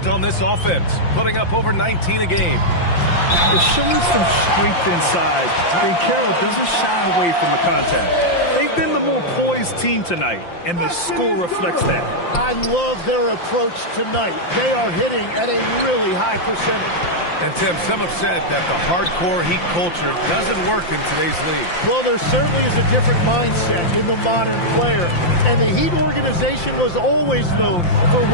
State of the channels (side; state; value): right; late; 5.8 ms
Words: on this offense, putting up over 19 a game. They're showing some strength inside. Banchero doesn't shy away from the contact. They've been the more poised team tonight, and the score reflects that. I love their approach tonight. They are hitting at a really high percentage. And, Tim, some have said that the hardcore Heat culture doesn't work in today's league. Well, there certainly is a different mindset in the modern player. And the Heat organization was always known for